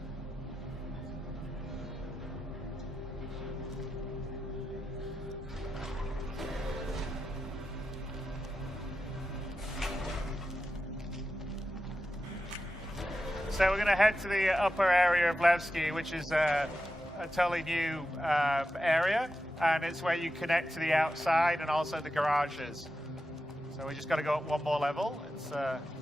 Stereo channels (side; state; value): both; normal; correlation 0.90